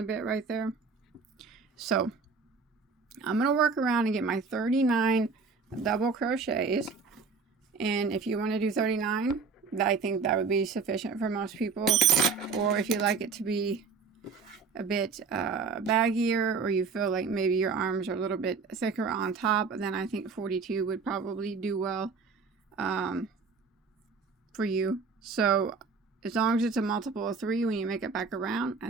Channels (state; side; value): quieter; left; 4.9 dB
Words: bit right there. So I'm going to work around and get my 39 double crochets. And if you want to do 39, I think that would be sufficient for most people. Or if you like it to be a bit baggier, or you feel like maybe your arms are a little bit thicker on top, then I think 42 would probably do well for you. So as long as it's a multiple of 3 when you make it back around,